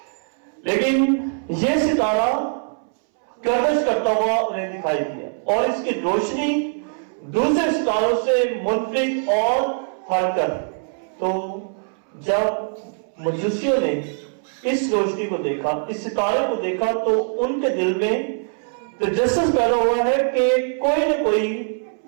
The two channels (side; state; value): left; silent; 64 dB below the other